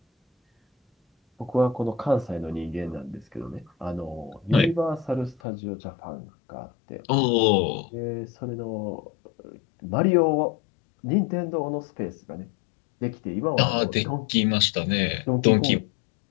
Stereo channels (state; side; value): drops out; right; at 5.4 s